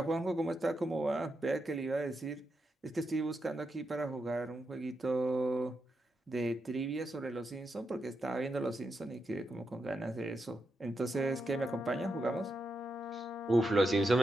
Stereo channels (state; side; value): normal; both; correlation 0.85